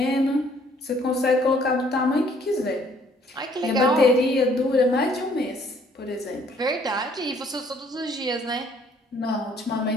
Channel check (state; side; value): normal; both; correlation 0.61